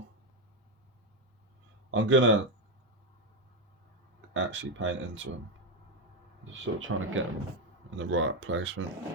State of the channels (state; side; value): normal; both; correlation 0.08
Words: I'm gonna actually paint into them, just sort of trying to get them in the right placement.